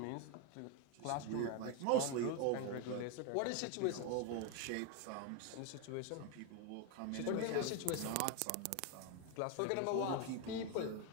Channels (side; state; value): both; different; correlation 0.01